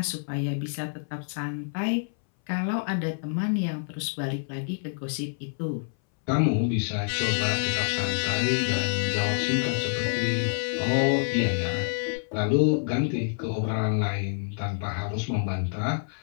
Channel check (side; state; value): right; silent; 60 dB below the other